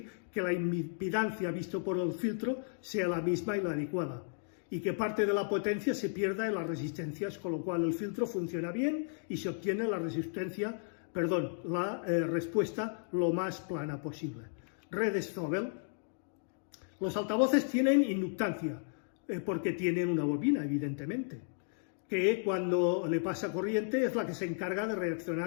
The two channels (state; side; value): silent; right; digital silence